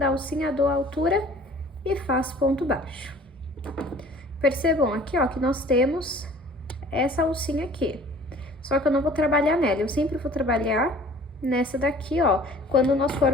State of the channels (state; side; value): normal; both; correlation 0.50